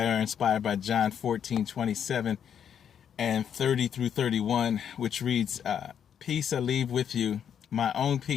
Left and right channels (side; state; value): right; quieter; 8.5 dB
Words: are inspired by John 14:27 and 30 through 31, which reads, Peace I leave with you, my own